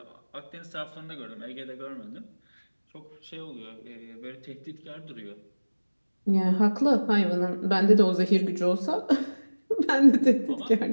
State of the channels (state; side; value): inverted; both; correlation -1.00